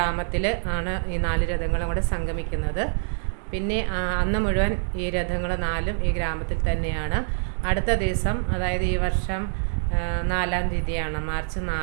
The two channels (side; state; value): left; silent; 62 dB below the other